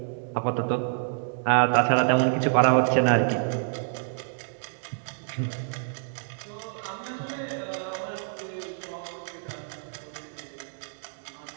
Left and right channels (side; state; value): left; silent; 60 dB below the other